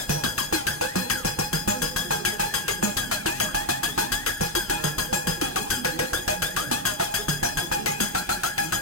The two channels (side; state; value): both; normal; correlation 0.03